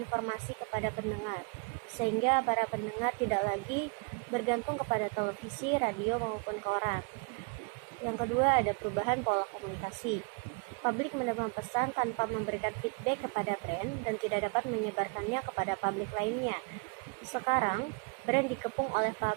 kepada pendengar, sehingga para pendengar tidak lagi bergantung kepada televisi, radio, maupun koran. Yang kedua, ada perubahan pola komunikasi. Publik menerima pesan tanpa memberikan feedback kepada brand dan tidak dapat menyebarkannya kepada publik lainnya. Sekarang, brand dikepung oleh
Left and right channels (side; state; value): left; quieter; 35.1 dB